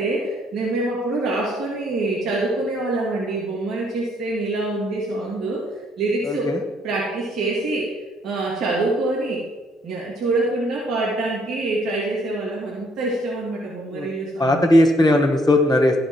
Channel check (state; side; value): normal; both; correlation 0.67